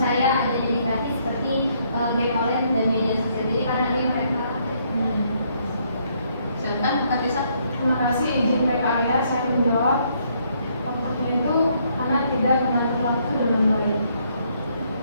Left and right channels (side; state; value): both; inverted; correlation -0.70